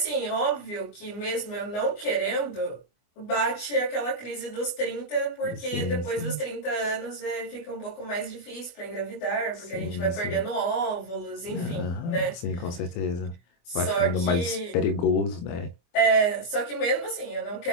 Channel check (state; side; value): late; right; 24 ms